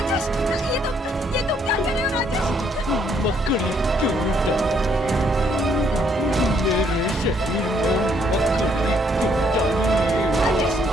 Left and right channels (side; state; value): both; normal; correlation 0.69